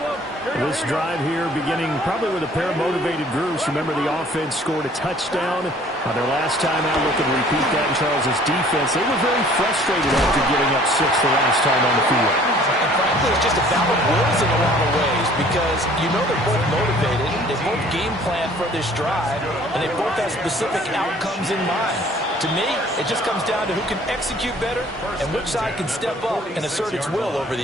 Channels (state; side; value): normal; both; correlation 0.54